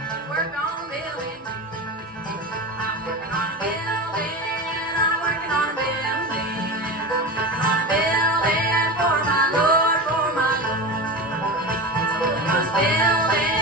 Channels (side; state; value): both; normal; correlation 0.26